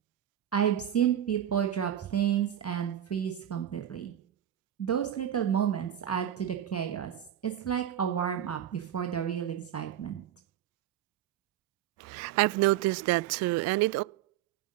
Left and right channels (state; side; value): quieter; left; 10.8 dB